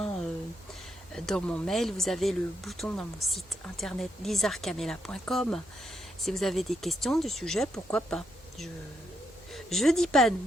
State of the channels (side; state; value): both; normal; correlation 0.79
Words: dans mon mail. Vous avez le bouton dans mon site internet lizarcamela.com. Si vous avez des questions du sujet, pourquoi pas. Je dis pas non.